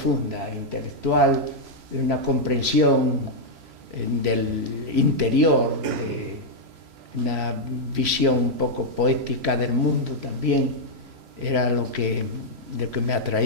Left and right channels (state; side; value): late; left; 3.0 ms